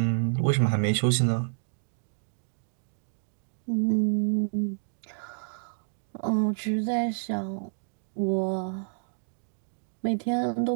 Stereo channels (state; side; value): silent; left; digital silence